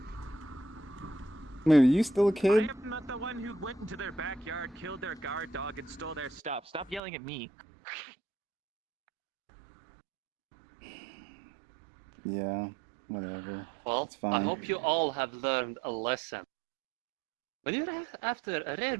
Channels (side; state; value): left; drops out; at 7.0 s